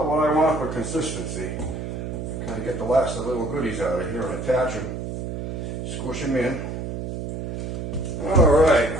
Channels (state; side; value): noise; right; hum, 5 dB below the sound